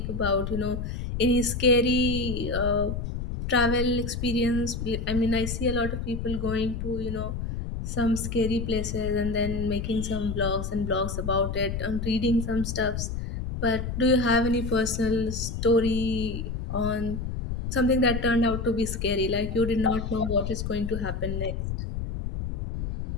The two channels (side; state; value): left; noise; rumble, 4 dB below the sound